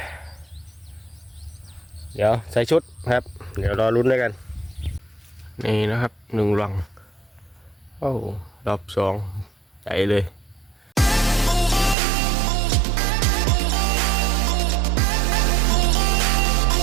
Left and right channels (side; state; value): left; drops out; at 12.0 s